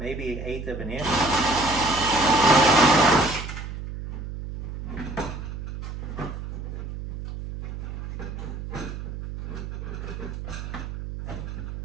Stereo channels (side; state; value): right; noise; hum, 8 dB below the sound